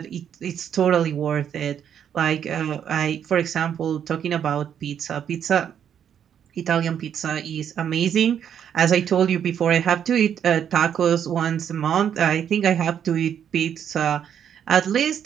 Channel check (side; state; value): left; quieter; 8.8 dB